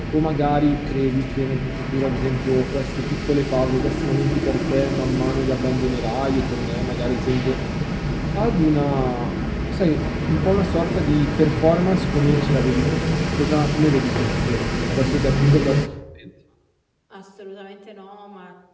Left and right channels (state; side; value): identical; both; correlation 1.00